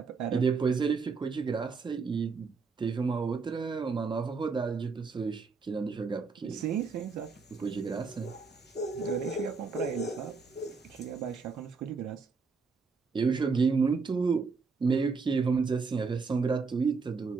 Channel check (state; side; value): quieter; left; 4.8 dB